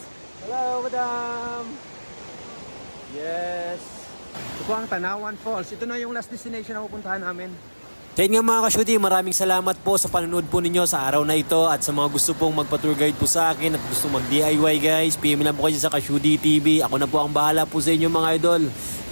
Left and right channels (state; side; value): inverted; both; correlation -1.00